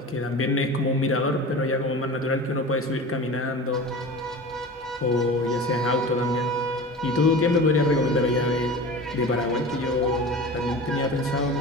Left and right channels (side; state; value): both; normal; correlation 0.34